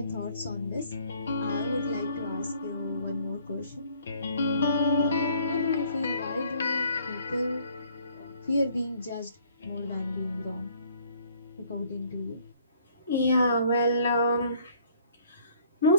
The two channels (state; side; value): inverted; both; correlation -0.60